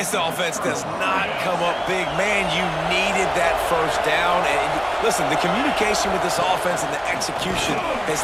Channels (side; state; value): both; identical; correlation 1.00